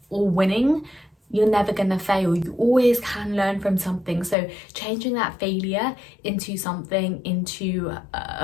or winning, you're never gonna fail. You always can learn from something. So changing that failure into something, into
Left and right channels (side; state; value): right; drops out; at 4.4 s